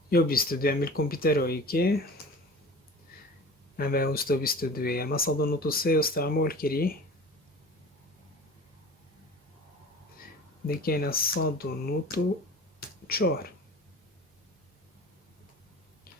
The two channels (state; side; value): normal; both; correlation 0.40